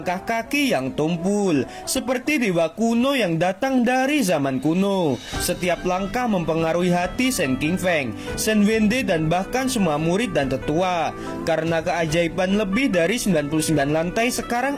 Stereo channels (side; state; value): both; identical; correlation 1.00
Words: kaki yang tumpul, seperti dewa kuno yang datang dari zaman kuno. Setiap langkah mempengaruhi hati Shen Qingfeng, Shen Wende, dan bahkan semua murid dan tetua. Karena keajaiban lebih dari 99 lantai, sekarang